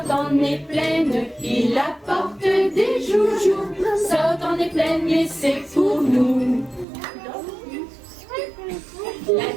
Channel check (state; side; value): drops out; left; at 6.9 s